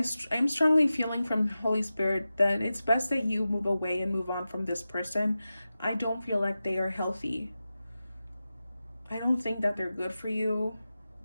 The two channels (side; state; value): both; inverted; correlation -0.94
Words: strongly feeling from Holy Spirit that it's best that you move away and move on from this person. I don't feel like they are healthy. I don't think that they're good for you.